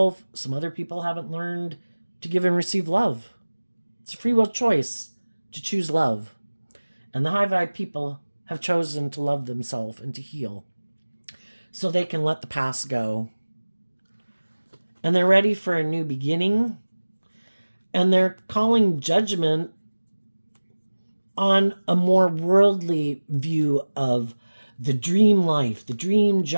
Some other people haven't learned to give and receive love. It's a free will choice to choose love. And the high vibe people have chosen to love themselves and to heal so they can let the past go. And they're ready for a new beginning. And they're calling judgment on a more worldly view of the dream life, the dream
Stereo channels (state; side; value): inverted; both; correlation -1.00